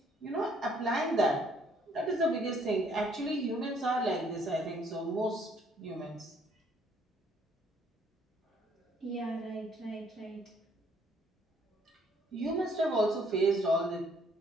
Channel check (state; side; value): normal; both; correlation 0.64